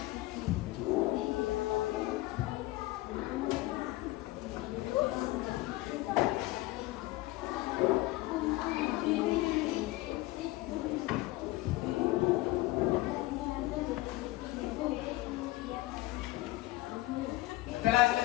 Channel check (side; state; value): right; quieter; 18.5 dB